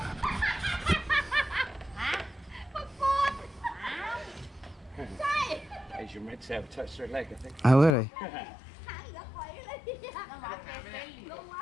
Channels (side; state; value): right; drops out; at 8.0 s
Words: Asian red tail touched her leg, I think. Oh, really?